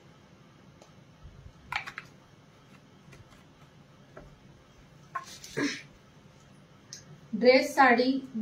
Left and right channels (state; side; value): identical; both; correlation 1.00